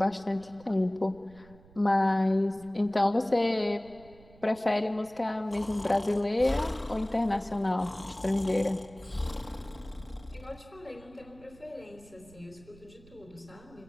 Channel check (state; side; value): noise; right; rumble, 24 dB below the sound